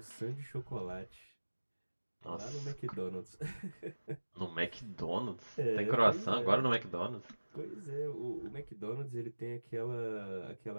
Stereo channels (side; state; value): both; inverted; correlation -1.00